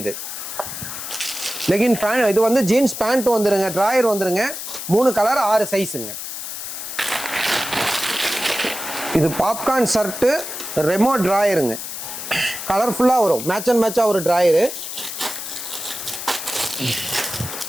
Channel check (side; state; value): left; noise; hiss, 7 dB below the sound